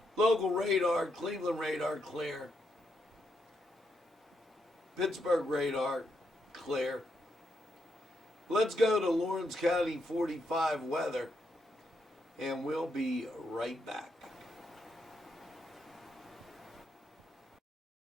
local radar, Cleveland radar clear, Pittsburgh radar clear. Let's go to Lawrence County 45 weather, and we'll be right back.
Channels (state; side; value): normal; both; correlation 0.80